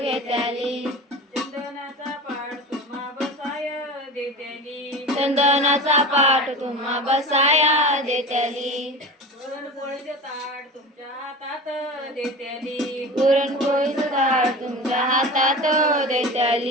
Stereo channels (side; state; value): both; normal; correlation 0.32